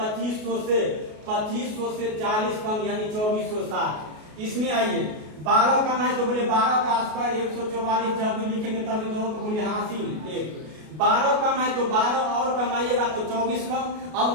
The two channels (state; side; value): late; left; 33 ms